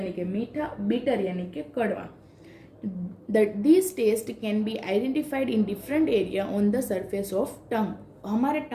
कि मीठा, बीटर यानी कि कड़वा। These taste can be identified in different area on the surface of tongue, हमारे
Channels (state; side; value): identical; both; correlation 1.00